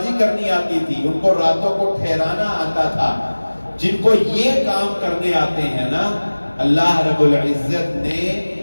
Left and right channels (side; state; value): both; inverted; correlation -1.00